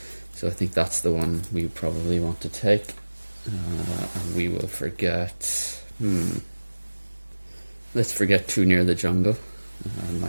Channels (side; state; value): both; inverted; correlation -1.00